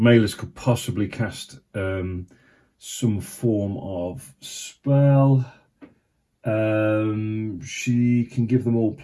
could possibly cast some form of spell. She can give them all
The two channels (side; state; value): both; identical; correlation 1.00